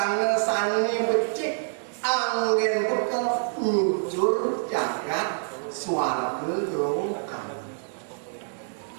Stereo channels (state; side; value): silent; left; digital silence